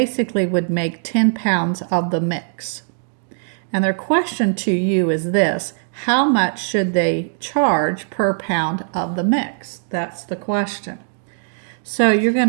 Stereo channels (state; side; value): silent; left; digital silence